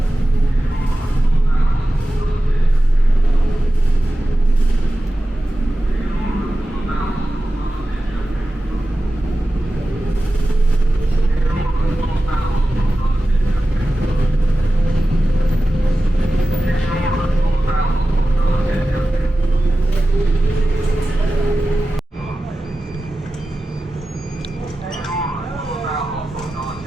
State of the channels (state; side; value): normal; both; correlation 0.94